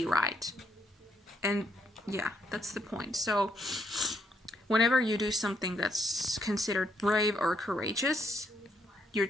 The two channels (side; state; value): both; normal; correlation 0.74